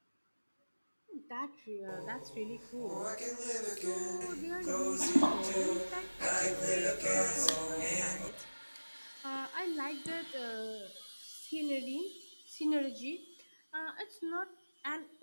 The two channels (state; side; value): inverted; both; correlation -1.00